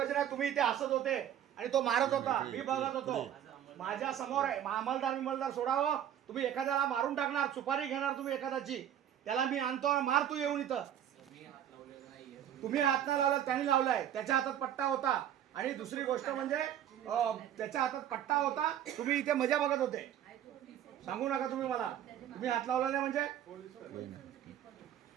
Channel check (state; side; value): quieter; left; 10.5 dB